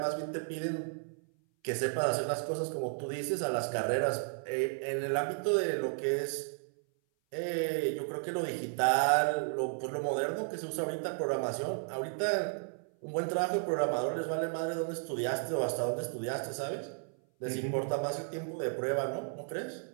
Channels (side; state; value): left; silent; 55 dB below the other